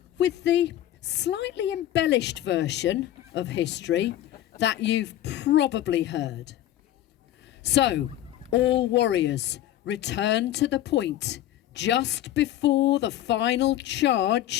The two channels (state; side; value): quieter; right; 13.0 dB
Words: with the slightly embellished version of history that you've probably heard. So, all warriors, return to the point just before the final